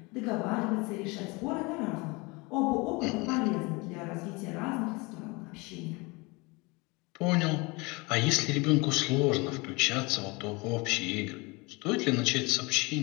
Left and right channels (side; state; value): right; quieter; 26.3 dB